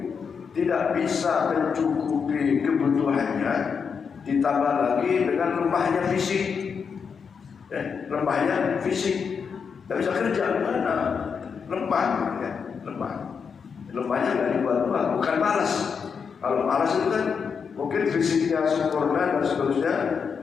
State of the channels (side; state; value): right; quieter; 6.2 dB